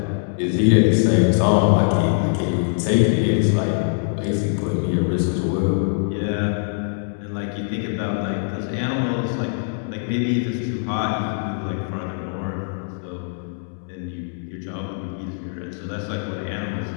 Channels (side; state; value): right; silent; digital silence